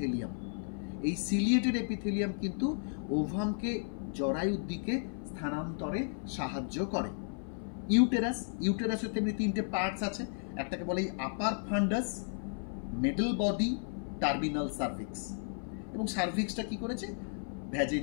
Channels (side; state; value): right; silent; 55 dB below the other